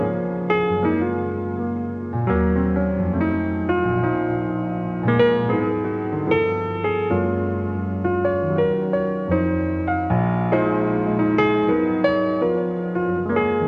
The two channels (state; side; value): identical; both; correlation 1.00